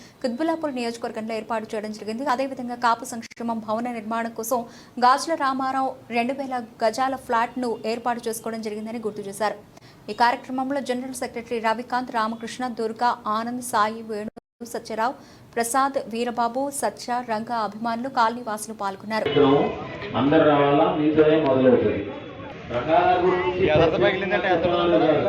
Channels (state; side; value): identical; both; correlation 1.00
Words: కుత్బుల్లాపూర్ నియోజకవర్గంలో ఏర్పాటు చేయడం జరిగింది. అదేవిధంగా కాపు సంక్షేమం భవన నిర్మాణం కోసం గాజుల రామారావు 2000 గజాల ఫ్లాట్ ను ఏర్పాటు చేసుకోవడం జరిగిందని గుర్తు చేశారు. ఈ కార్యక్రమంలో జనరల్ సెక్రటరీ రవికాంత్, రామకృష్ణ, దుర్గా, ఆనంద్, సాయి, వేణు, సత్యరావు, ప్రసాద్, వీరబాబు, సత్య, రంగా అభిమానులు, కాలనీ వాసులు పాల్గొన్నారు.